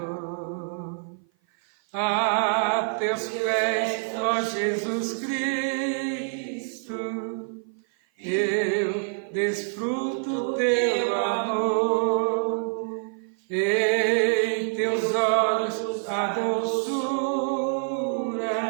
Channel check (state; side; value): silent; left; 55 dB below the other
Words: A teus pés, ó Jesus Cristo, eu desfruto teu amor, em teus olhos a doçura,